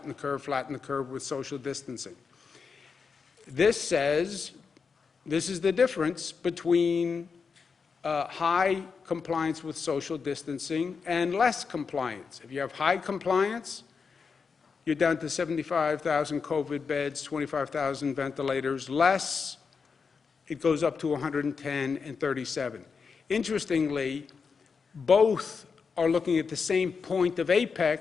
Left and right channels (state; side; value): quieter; right; 5.4 dB